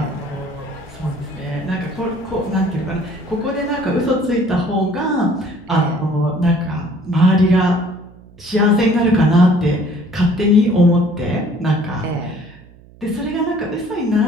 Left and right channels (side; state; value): right; noise; hum, 24 dB below the sound